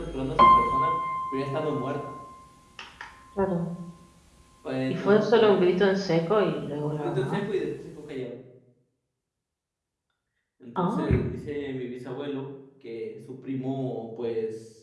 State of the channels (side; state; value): both; identical; correlation 1.00